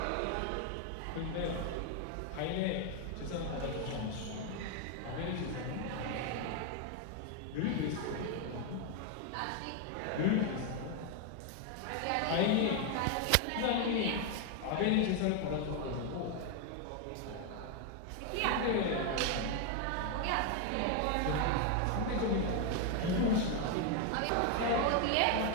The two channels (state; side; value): different; both; correlation 0.01